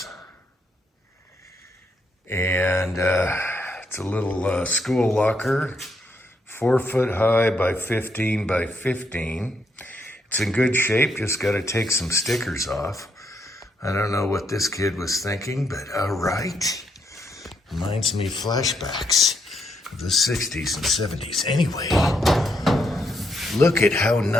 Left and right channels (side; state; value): both; normal; correlation 0.77